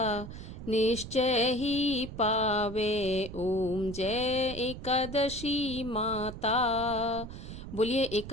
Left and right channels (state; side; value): noise; right; rumble, 11 dB below the sound